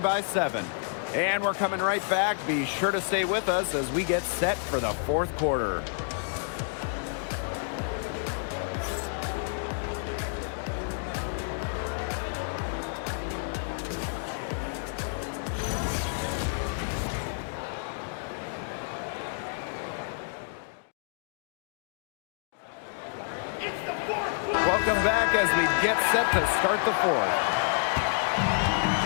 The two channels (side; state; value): right; silent; digital silence